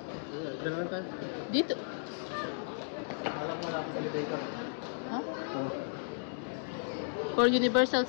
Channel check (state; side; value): silent; right; digital silence